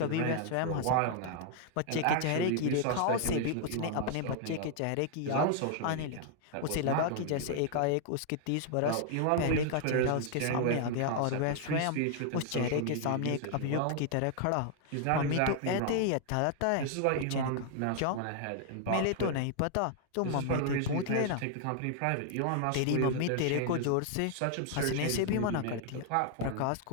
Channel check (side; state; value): both; different; correlation 0.00